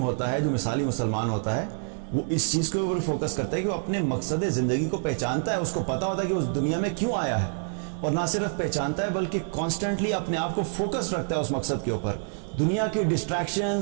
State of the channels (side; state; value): left; silent; 59 dB below the other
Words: ہوتا ہے، جو مثالی مسلمان ہوتا ہے، وہ اس چیز کے اوپر فوکس کرتا ہے کہ وہ اپنے مقصد زندگی کو پہچانتا ہے، اس کو پتہ ہوتا ہے کہ اس دنیا میں کیوں آیا ہے، اور نہ صرف پہچانتا ہے بلکہ کانسٹنٹلی اپنے آپ کو فوکس رکھتا ہے اس مقصد کے اوپر۔ دنیا کی